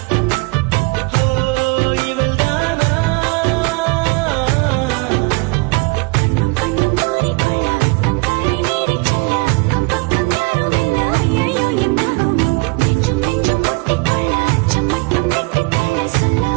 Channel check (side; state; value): left; quieter; 27.8 dB